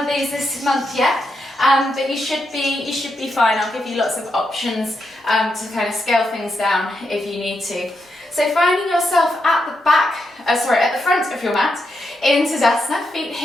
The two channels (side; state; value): both; normal; correlation 0.83